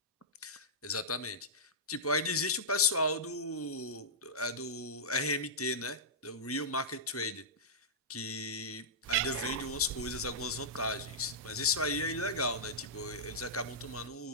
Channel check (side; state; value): both; normal; correlation -0.15